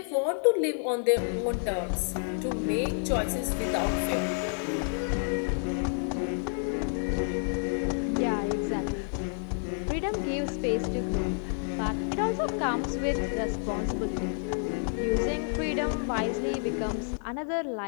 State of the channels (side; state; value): right; silent; 58 dB below the other